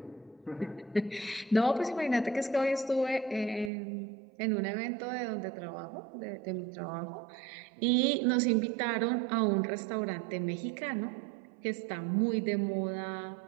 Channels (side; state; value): left; drops out; at 3.7 s